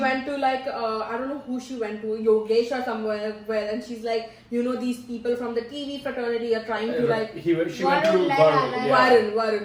went to like I don't know who she went to, Yogesh or somewhere, and she's like, you know, these people from the TV fraternity are trying to like. She went to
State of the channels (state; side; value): identical; both; correlation 1.00